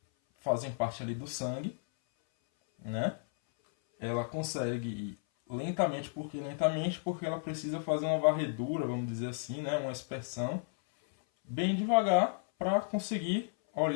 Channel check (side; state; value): right; silent; 56 dB below the other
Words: fazem parte ali do sangue, né? Ela consegue ir lentamente, porque ela precisa fazer uma varredura, vamos dizer assim, né? Uma aspersão bem devagar para conseguir